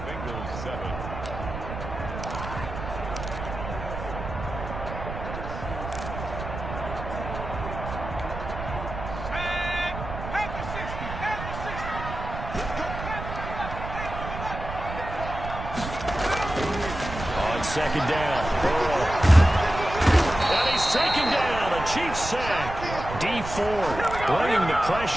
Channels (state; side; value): noise; right; rumble, 8 dB below the sound